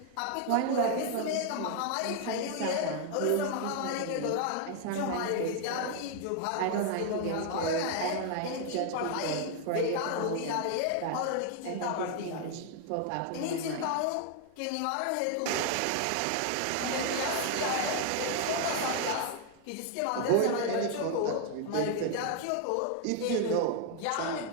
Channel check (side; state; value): both; different; correlation 0.00